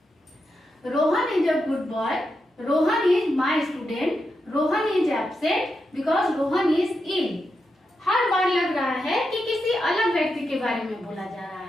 Rohan is a good boy, Rohan is my student, Rohan is absent because Rohan is ill. हर बार लग रहा है कि किसी अलग व्यक्ति के बारे में बोला जा रहा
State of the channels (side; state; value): both; normal; correlation 0.86